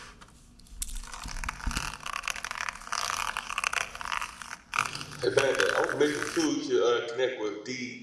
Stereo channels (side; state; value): both; identical; correlation 1.00